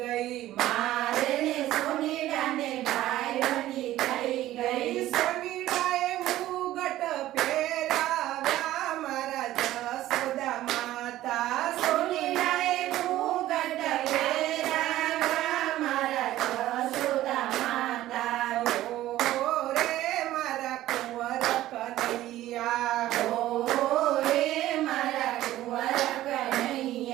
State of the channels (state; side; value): quieter; left; 14.6 dB